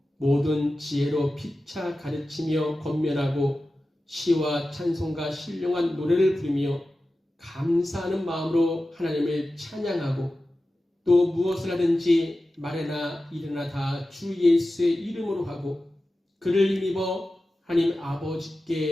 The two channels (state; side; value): normal; both; correlation 0.94